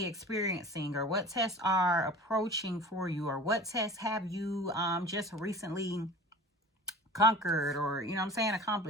experiencing, or what tests are approaching for you, or what tests have you just recently conquered, or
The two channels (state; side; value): normal; both; correlation 0.40